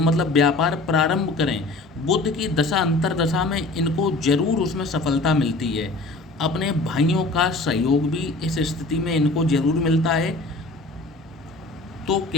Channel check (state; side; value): quieter; right; 3.1 dB